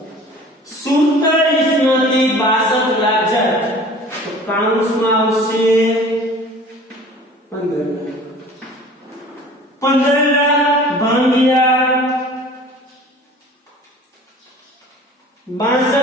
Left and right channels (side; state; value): both; normal; correlation 0.45